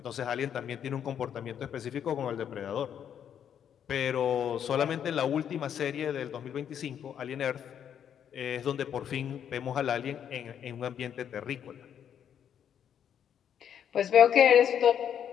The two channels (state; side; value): quieter; right; 8.9 dB